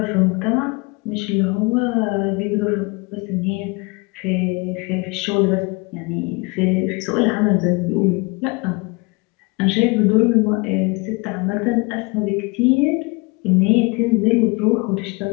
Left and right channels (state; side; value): quieter; right; 27.4 dB